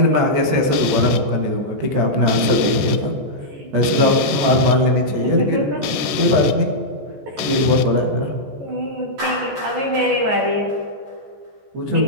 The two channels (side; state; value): left; late; 14 ms